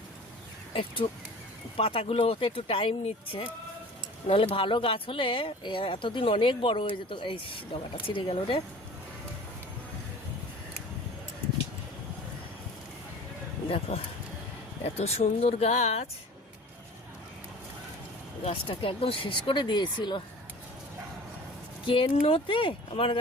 একটু পাতাগুলো হতে একটু টাইম নিচ্ছে। নাহলে ভালো গাছ হলে এতদিন অনেক বড় হয়ে যেত। এই ডগাটা ছিঁড়ে গেল রে। দেখো এত সুন্দর গাছ, গাছটাকে একদম শেষ করে দিয়েছিল। কেন্নতে আমার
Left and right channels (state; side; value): normal; both; correlation 0.42